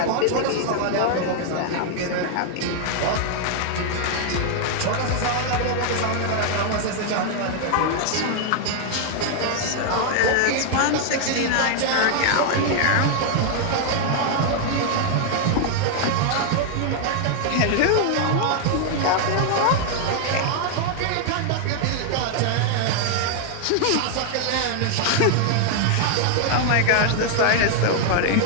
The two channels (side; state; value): both; different; correlation 0.00